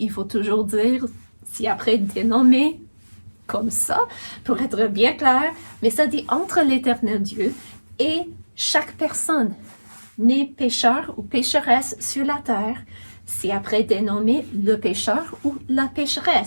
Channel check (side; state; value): both; inverted; correlation -1.00